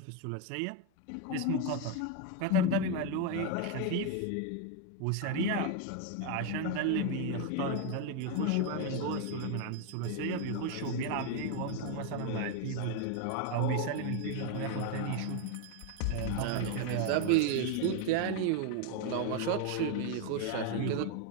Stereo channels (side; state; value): both; different; correlation 0.01